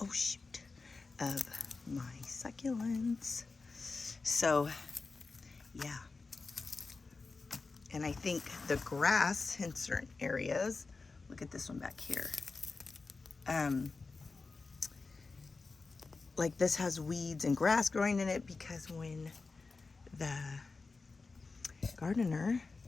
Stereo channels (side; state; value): right; quieter; 4.1 dB